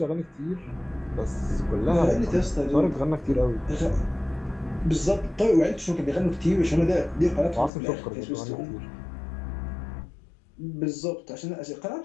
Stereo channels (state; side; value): drops out; right; at 7.7 s